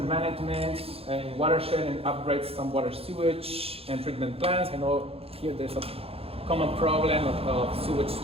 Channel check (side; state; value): left; late; 0.28 ms